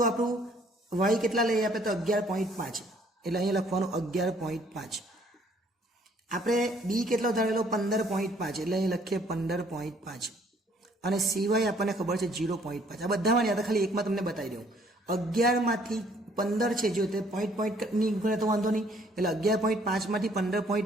આપણું વાય કેટલા લઈએ આપણે? તો 11.5, એટલે અહીંયા લખવાનું 11.5. આપણે બી કેટલો ધારેલો? 15.5, એટલે અહીં લખીએ 15.5, અને સિવાય આપણને ખબર છે 0.5. આ બધામાં યાદ, ખાલી એકમાં તમને બતાવી દઉં. 11 માંથી 15 છે, જો તે પોઈન્ટ ની ગણે તો વાંધો નહીં, એટલે 11.5 માંથી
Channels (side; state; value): both; normal; correlation 0.62